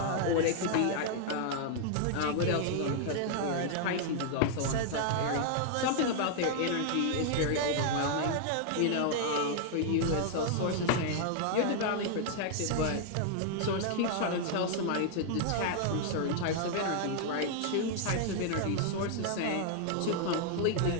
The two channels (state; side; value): different; both; correlation -0.01